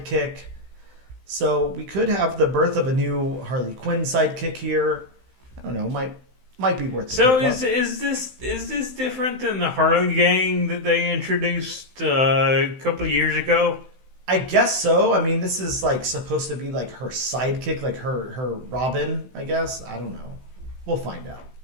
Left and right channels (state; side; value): late; left; 15 ms